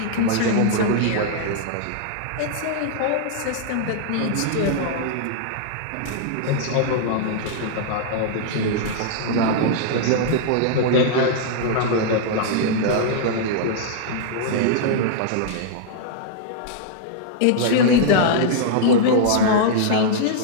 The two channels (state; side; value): different; both; correlation -0.01